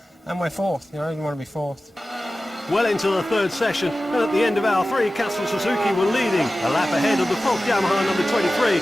and we're 4th. You know, I didn't want to be 4th. Well into the 3rd session, and at the end of hour 3, Castrol Suzuki were leading, a lap ahead of the Falk Yamaha number 23,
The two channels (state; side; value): normal; both; correlation 0.95